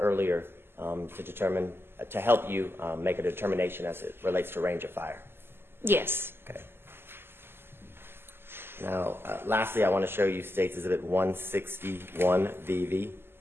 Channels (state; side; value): late; left; 0.11 ms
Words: earlier, to help you make a determination as it relates to range of fire? Yes. Okay. Now, lastly, I want to show you States Exhibit 161 VV.